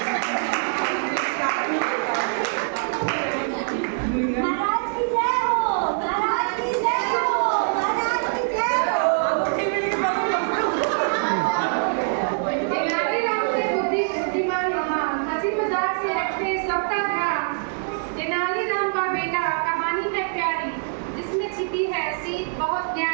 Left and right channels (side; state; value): left; silent; 63 dB below the other